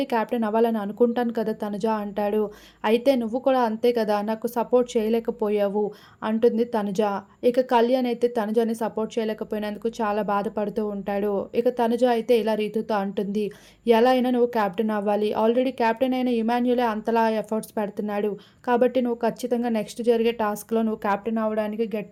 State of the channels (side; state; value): both; identical; correlation 1.00